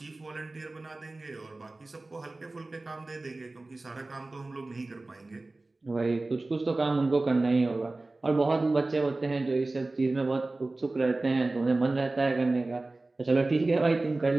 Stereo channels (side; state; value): left; quieter; 3.1 dB